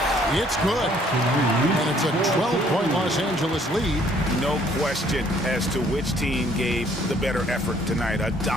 It's good. And it's a 12-point Los Angeles lead. No question as to which team gave the better effort tonight. A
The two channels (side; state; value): both; normal; correlation 0.62